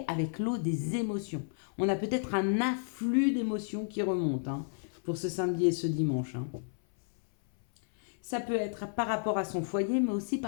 avec l'eau des émotions. On a peut-être un afflux d'émotions qui remonte, hein, pour ce samedi et ce dimanche. Hein. Ça peut être par rapport à son foyer, mais aussi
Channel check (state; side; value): silent; right; 57 dB below the other